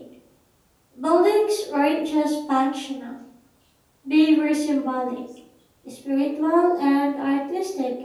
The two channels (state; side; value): identical; both; correlation 1.00